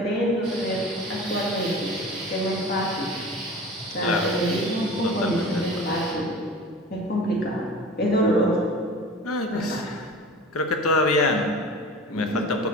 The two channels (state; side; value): normal; both; correlation 0.37